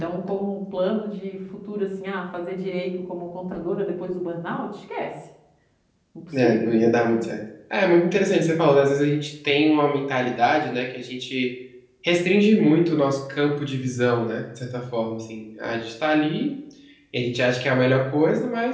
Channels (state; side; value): identical; both; correlation 1.00